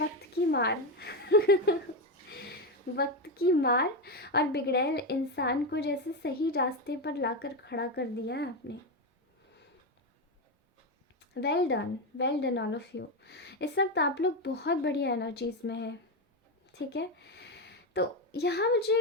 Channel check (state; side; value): normal; both; correlation 0.11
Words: की मार। वक्त की मार। और बिगड़ैल इंसान को जैसे सही रास्ते पर लाकर खड़ा कर दिया है आपने। Well done all of you. इस वक्त आप लोग बहुत बढ़िया एनर्जीज में हैं, ठीक है। तो यहाँ